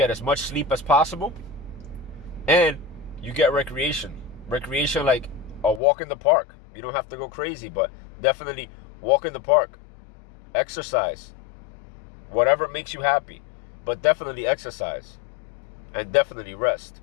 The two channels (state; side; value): drops out; right; at 5.8 s